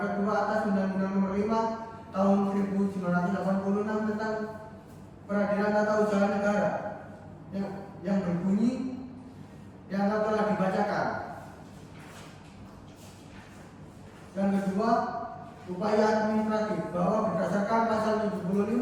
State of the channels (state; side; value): identical; both; correlation 1.00